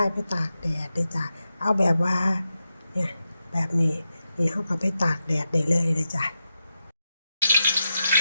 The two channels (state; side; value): inverted; both; correlation -0.88